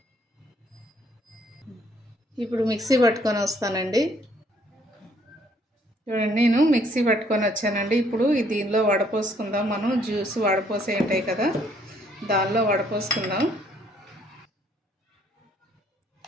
ఇప్పుడు మిక్సీ పట్టుకొని వస్తానండి. చూడండి, నేను మిక్సీ పట్టుకొని వచ్చానండి. ఇప్పుడు దీనిలో వడపోసుకుందాం. మనం జ్యూస్ వడపోసే ఉంటాయి కదా, దానిలో వడపోసుకుందాం.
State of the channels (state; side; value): normal; both; correlation 0.65